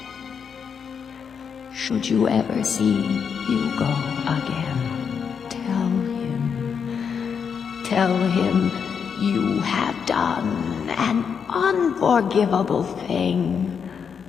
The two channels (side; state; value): right; quieter; 6.8 dB